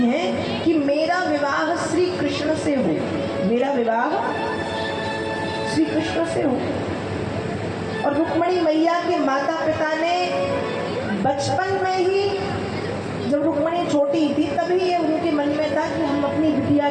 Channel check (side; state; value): both; identical; correlation 1.00